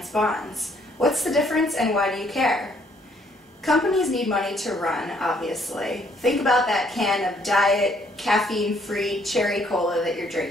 bonds? What's the difference and why do you care? Companies need money to run, obviously. Think about that can of diet, caffeine-free cherry cola that you're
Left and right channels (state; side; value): normal; both; correlation 0.66